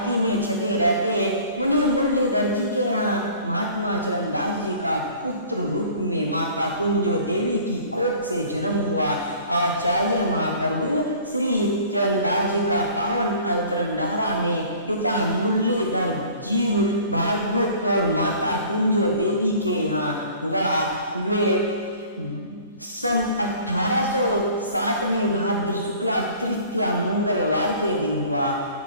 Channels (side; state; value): both; inverted; correlation -0.49